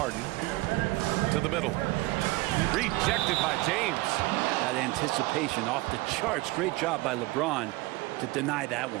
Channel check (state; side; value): quieter; left; 21.2 dB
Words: To the middle. Rejected by James. That anticipation off the charts. Great job by LeBron to deny that